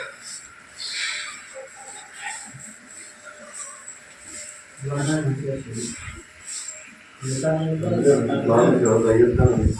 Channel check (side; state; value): both; identical; correlation 1.00